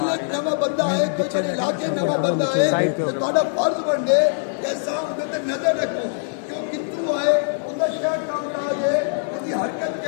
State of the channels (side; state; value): right; silent; 64 dB below the other